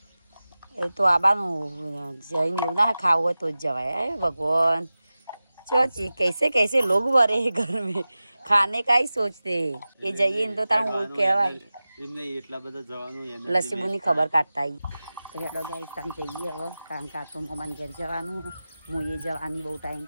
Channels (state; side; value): inverted; both; correlation -0.96